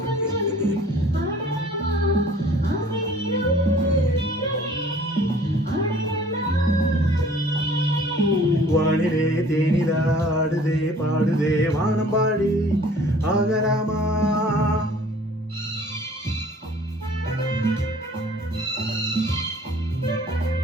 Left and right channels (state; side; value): normal; both; correlation 0.52